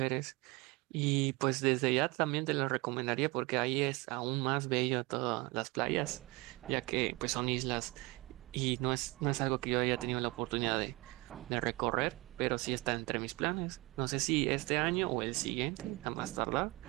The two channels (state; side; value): quieter; left; 24.0 dB